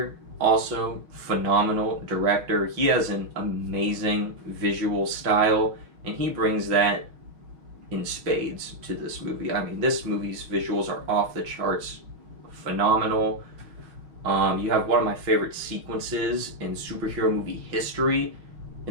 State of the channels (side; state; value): left; late; 5.9 ms